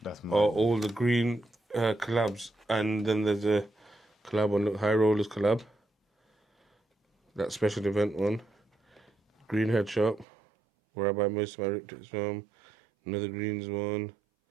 are all the green collabs, and then there's a collab on High Rollers collab. That special event one. Green Head Shop, where I buy most of my rip tips from. Another greens one.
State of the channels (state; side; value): drops out; left; at 10.2 s